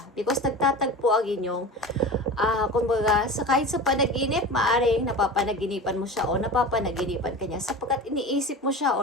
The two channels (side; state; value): both; normal; correlation 0.32